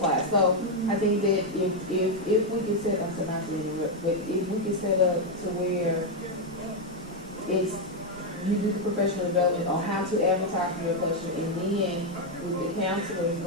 class. So I think that if we could set up, so not to interrupt, but if we could set up to where it's, you do the professional development on how to advertise for your question, and then with the counselors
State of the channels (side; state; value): right; noise; rumble, 21 dB below the sound